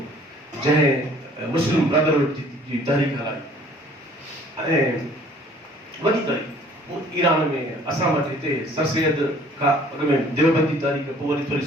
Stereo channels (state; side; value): normal; both; correlation 0.55